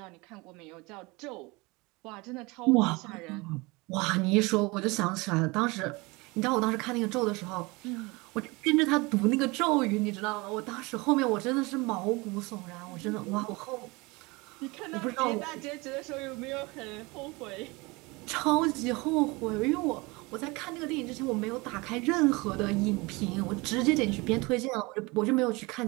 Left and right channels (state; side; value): quieter; left; 24.9 dB